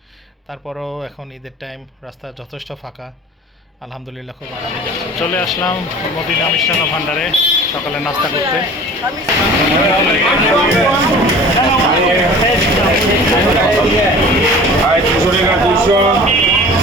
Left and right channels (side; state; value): both; normal; correlation 0.42